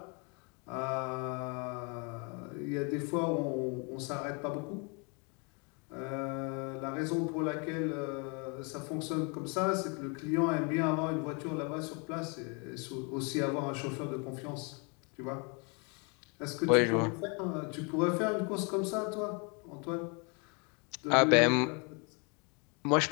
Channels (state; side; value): quieter; right; 33.7 dB